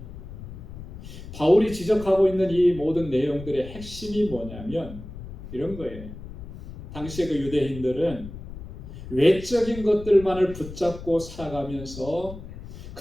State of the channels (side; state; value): left; noise; rumble, 12 dB below the sound